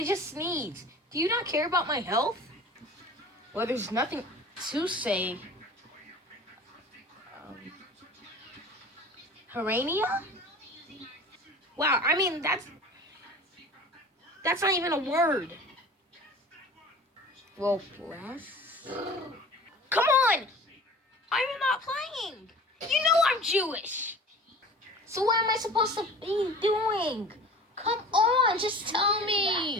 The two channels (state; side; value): normal; both; correlation 0.41